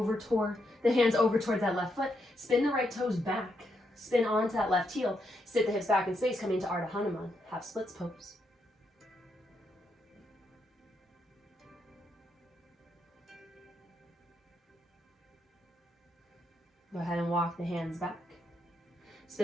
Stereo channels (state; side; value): normal; both; correlation 0.80